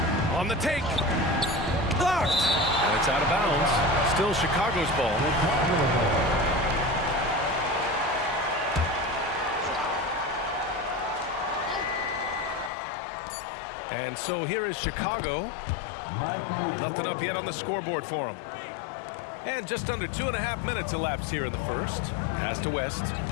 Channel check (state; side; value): drops out; right; at 12.7 s